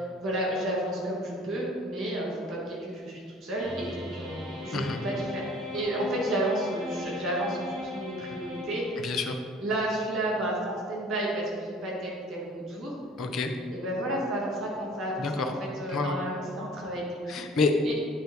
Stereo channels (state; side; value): normal; both; correlation 0.49